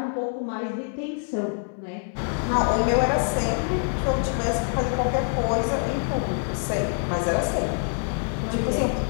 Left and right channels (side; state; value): right; silent; 61 dB below the other